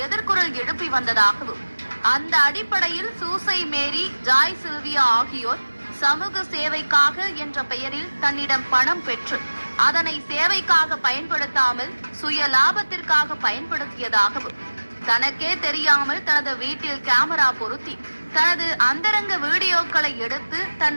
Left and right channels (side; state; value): both; inverted; correlation -1.00